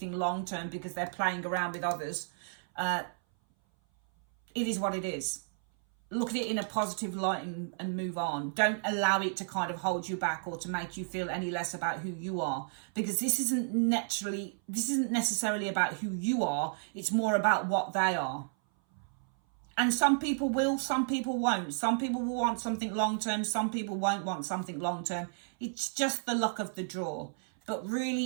long term because they're playing around with others, it is what it is. Look at it in a positive light and move on. Don't allow it to kind of hold you back or to make you feel any less about who you are, because this isn't necessarily about who you are. It's more about what they are. And some people will, some people won't. Some people will want something long-term. Some people won't want something long-term. It's just the luck of the draw. But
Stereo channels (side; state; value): left; silent; 56 dB below the other